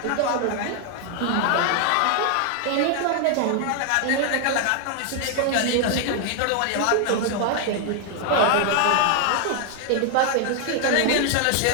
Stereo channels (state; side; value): different; both; correlation 0.00